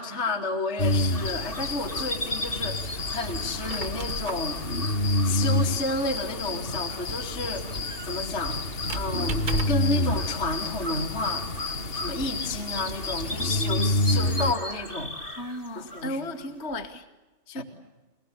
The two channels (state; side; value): late; right; 2.8 ms